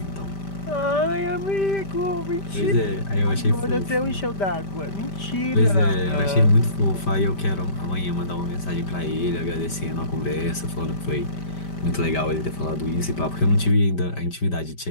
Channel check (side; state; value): right; late; 5.1 ms